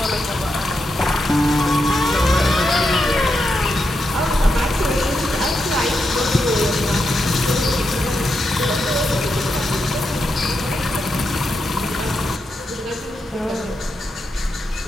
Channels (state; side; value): normal; both; correlation 0.85